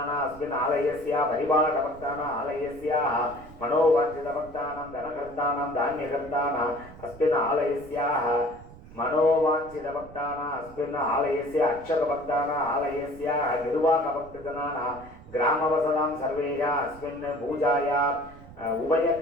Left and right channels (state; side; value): noise; right; rumble, 19 dB below the sound